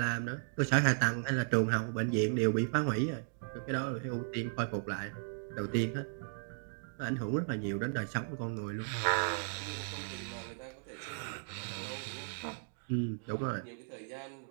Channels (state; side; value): silent; left; digital silence